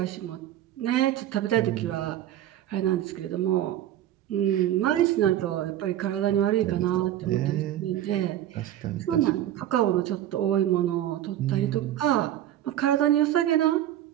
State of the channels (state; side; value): quieter; left; 12.3 dB